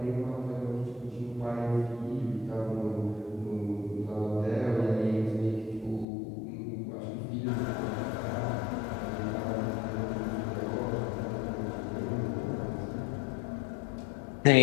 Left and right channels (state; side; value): drops out; right; at 6.1 s